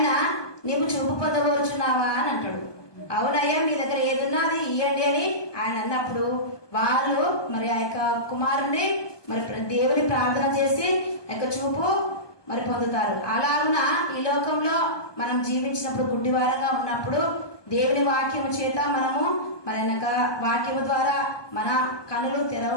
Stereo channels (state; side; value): late; right; 1.2 ms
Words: నీవు చూపు పొందవచ్చున్నావా అని అంటాడు. అవునయ్యా మీ దగ్గర ఏదున్నా అది ఇవ్వండి అని ఆయన అన్నప్పుడు వాళ్ళు మరి ఆ యొక్క కుమారుని మరి దేవుని ప్రార్థన చేసి ఆ యొక్క చూపు మరి పొందుతారు. అలాగున ఈ లోకంలో మనం జీవించినప్పుడు గుడ్డివారంగా ఉన్నప్పుడు దేవుని వాక్యము చేత మనము మరి వాక్యము ద్వారా మన కనులు